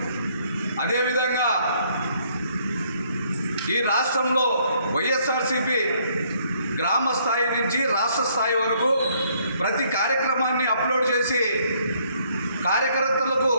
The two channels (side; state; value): both; inverted; correlation -0.66